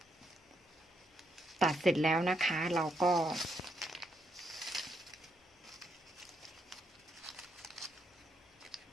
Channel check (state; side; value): normal; both; correlation 0.76